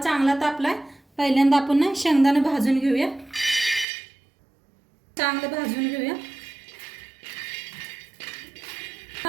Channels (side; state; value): left; drops out; at 3.9 s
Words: तापलाय. पहिल्यांदा आपण शेंगदाणे भाजून घेऊया. चांगलं भाजून घेऊया.